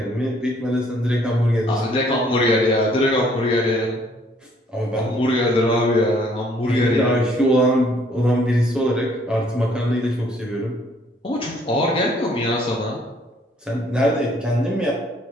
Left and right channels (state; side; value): normal; both; correlation 0.63